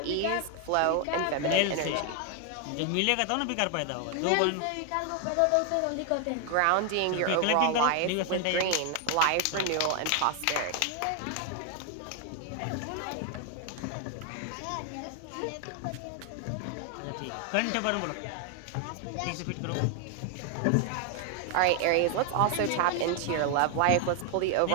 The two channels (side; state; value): both; different; correlation 0.00